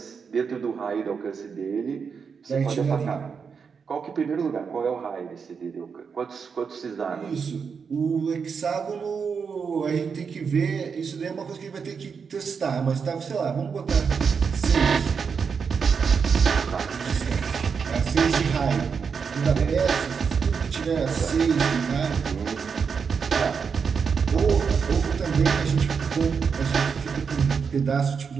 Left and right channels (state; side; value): quieter; left; 6.0 dB